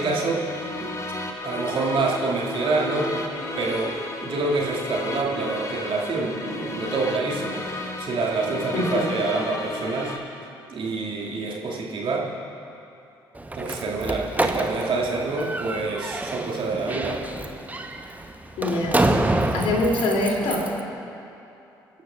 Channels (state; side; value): normal; both; correlation 0.61